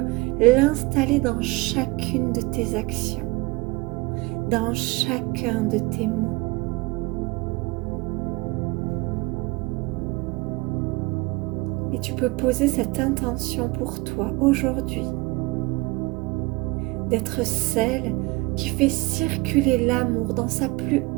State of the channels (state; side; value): quieter; left; 23.8 dB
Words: l'installer dans chacune de tes actions, dans chacun de tes mots. Et tu peux poser cette intention pour toi aujourd'hui, d'être celle qui fait circuler l'amour dans sa plus